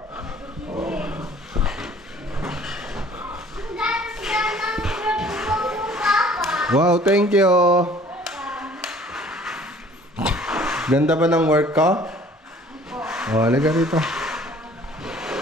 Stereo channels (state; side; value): normal; both; correlation 0.53